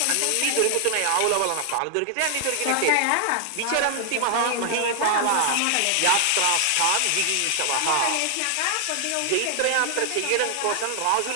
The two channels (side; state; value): both; different; correlation 0.00